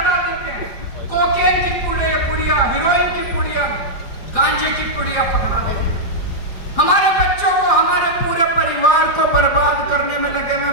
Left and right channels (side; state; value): right; late; 4.9 ms